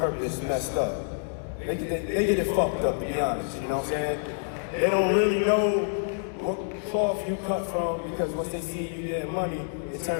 messed up. They get it fucked up, to be honest, you know what I'm saying? They don't really know what cloth you cut from, because once they see you getting money, it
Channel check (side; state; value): right; silent; digital silence